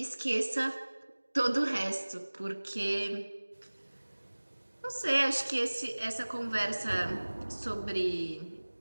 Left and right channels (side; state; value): both; inverted; correlation -1.00